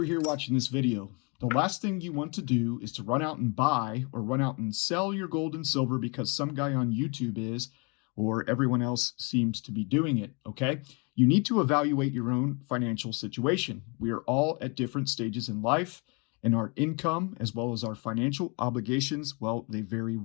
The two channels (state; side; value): quieter; right; 32.4 dB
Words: here watching this video. The last thing you want to do is to run out and buy or run out and sell your gold and silver because some guy on YouTube is, or everyone else seems to be doing it, okay? You need to evaluate your own financial situation. We are all at different stages in life, and our income as well as our financial obligations, well, they vary